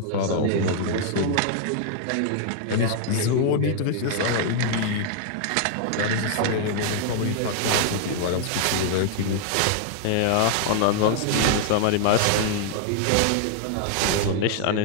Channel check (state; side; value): different; both; correlation 0.00